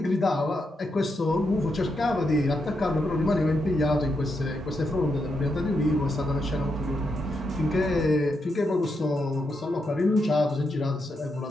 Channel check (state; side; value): normal; both; correlation 0.83